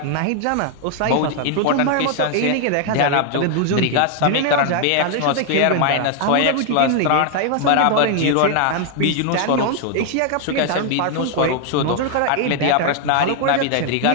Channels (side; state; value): both; different; correlation 0.00